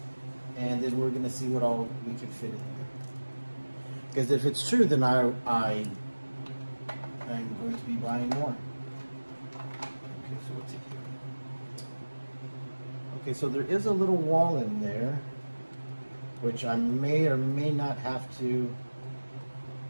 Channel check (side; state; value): both; inverted; correlation -1.00